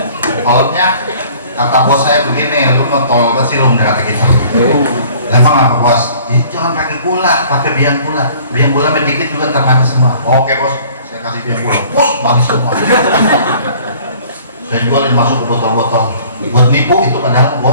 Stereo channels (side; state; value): both; inverted; correlation -0.52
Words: Kolomnya kata bos saya begini, lu mau tol ke silum kata gitu. Emang apa bos? Jangan pakai gula, pakai biang gula. Biang gula sedikit juga termanis semua. Oke bos, saya kasih biang gula. Bos, manis semua. Saya jualin masuk ke botol-botol. Buat nipu itu padahal